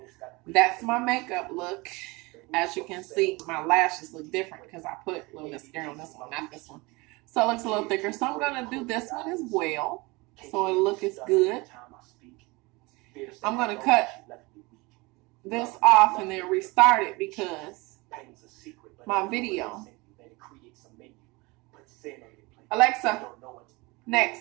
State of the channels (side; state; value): left; quieter; 24.6 dB